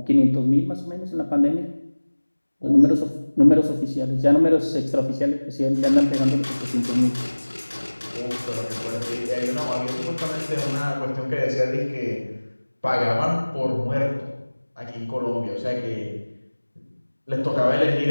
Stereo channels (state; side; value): inverted; both; correlation -1.00